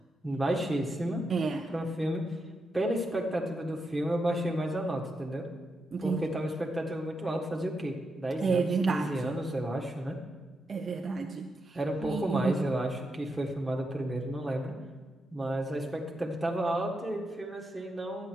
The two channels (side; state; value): both; normal; correlation 0.84